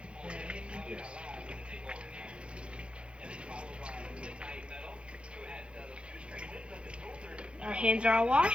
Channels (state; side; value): late; left; 0.058 ms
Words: Our hands are all